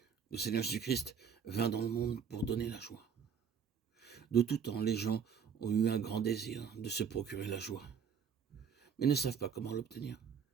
Le Seigneur Jésus-Christ vint dans le monde pour donner la joie. De tout temps, les gens ont eu un grand désir de se procurer la joie, mais ne savent pas comment l'obtenir.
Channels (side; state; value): left; quieter; 7.0 dB